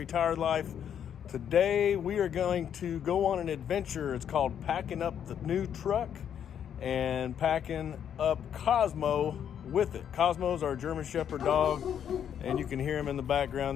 Life. Today we are going to go on an adventure. It's called packing up the new truck and packing up Cosmo with it. Cosmo's our German Shepherd dog, and you can hear him in the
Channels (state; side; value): quieter; right; 8.9 dB